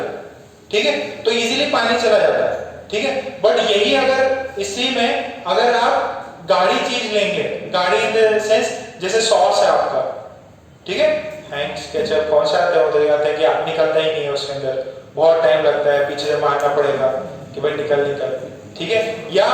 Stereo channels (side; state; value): both; identical; correlation 1.00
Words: ठीक है, तो इजीली पानी चला जाता है, ठीक है। बट यही अगर इसी में अगर आप गाढ़ी चीज लेंगे, गाढ़ी इन द सेंस जैसे सॉस है आपका, ठीक है, हैंक्स केचप कौन सा आता है, उधर आता है कि आप निकलता ही नहीं है उसके अंदर, बहुत टाइम लगता है, पीछे से मारना पड़ेगा कि भाई निकल निकल, ठीक है। या